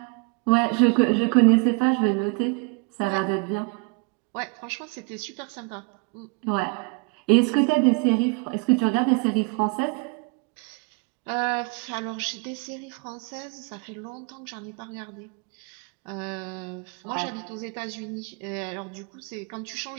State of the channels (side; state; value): left; quieter; 32.5 dB